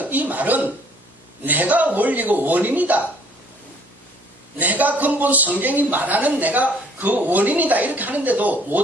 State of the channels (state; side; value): normal; both; correlation 0.59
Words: 이 말은 내가 원리고 원인이다. 내가 근본 성경이 말하는 내가 그 원인이다 이렇게 하는데도